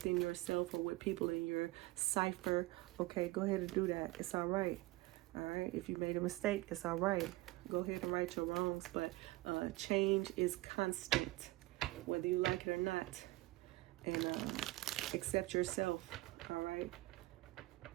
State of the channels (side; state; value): left; quieter; 19.6 dB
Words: yourself or with people in your cipher, okay, go ahead and do that. It's all right. All right, if you made a mistake, it's all right. Go ahead and right your wrongs, but change is constant, whether you like it or not. And accept yourself, all right?